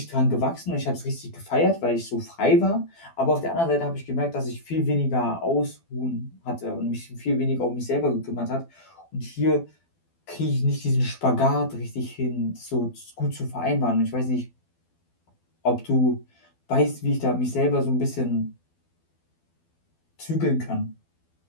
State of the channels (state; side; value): late; right; 12 ms